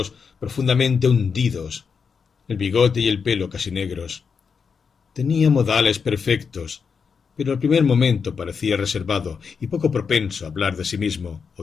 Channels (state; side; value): quieter; right; 5.9 dB